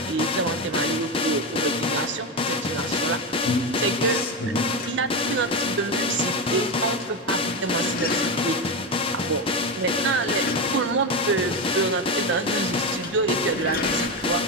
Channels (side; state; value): both; normal; correlation 0.14